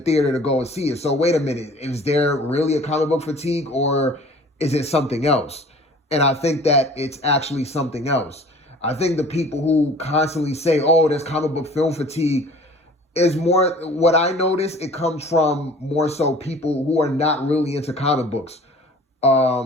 to go and see it. So wait a minute, is there really a comic book fatigue, or is it something else? And I think that it's actually something else. I think the people who constantly say, oh, there's comic book film fatigue, is more, what I notice, it comes from more so people who are not really into comic books.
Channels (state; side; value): normal; both; correlation 0.47